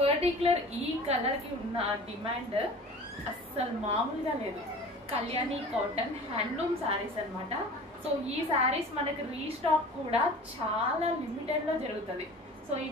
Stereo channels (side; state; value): both; normal; correlation 0.41